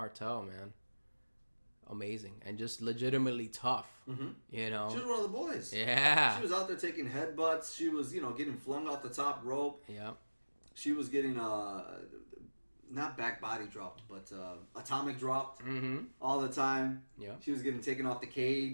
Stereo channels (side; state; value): both; inverted; correlation -1.00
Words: man, amazing and just legitimately tough. Mm-hmm. You know, she was one of the boys. Yeah, she was out there taking headbutts. She was, getting flung off the top rope. Yeah, she was getting not back body dropped, but atomic dropped all the time. Yeah, she was getting taken off the